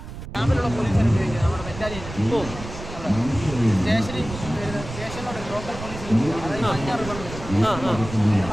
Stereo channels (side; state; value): right; noise; rumble, 11 dB below the sound